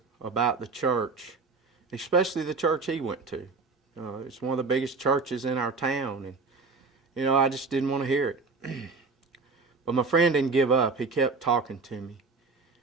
about the church, especially the church he went to. It's one of the biggest churches in our town, and I just didn't want to hear it. But my friend didn't give up. He kept talking to me,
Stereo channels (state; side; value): quieter; left; 4.3 dB